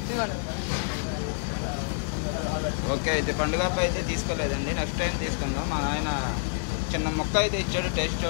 ఓకే. అయితే పండుగ అయితే తీసుకోలేదండి, నెక్స్ట్ టైం తీసుకుందాం. మా ఆయన చిన్న మొక్క అయితే ఇచ్చాడు, టేస్ట్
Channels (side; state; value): right; silent; digital silence